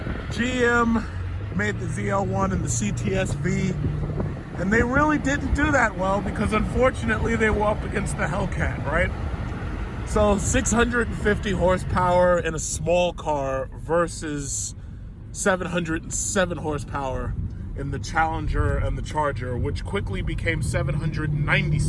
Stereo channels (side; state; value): both; identical; correlation 1.00